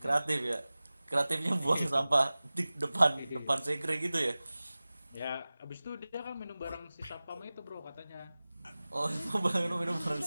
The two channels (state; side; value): inverted; both; correlation -0.98